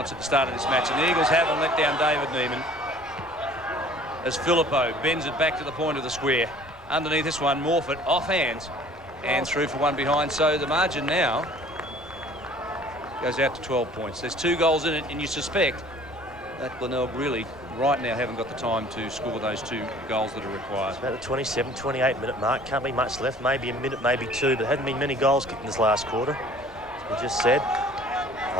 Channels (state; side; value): normal; both; correlation 0.50